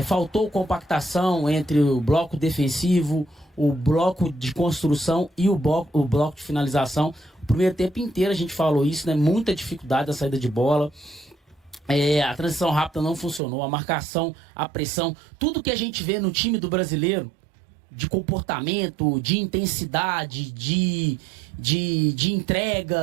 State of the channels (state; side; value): drops out; left; at 13.4 s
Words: faltou compactação entre o bloco defensivo, o bloco de construção e o bloco de finalização. O primeiro tempo inteiro a gente falou isso, né? Muita dificuldade da saída de bola. A transição rápida não funcionou, a marcação, a pressão, tudo que a gente vê no time do brasileiro, de comportamento, de intensidade, de